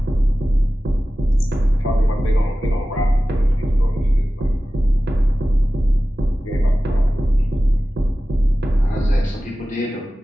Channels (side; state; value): both; normal; correlation 0.95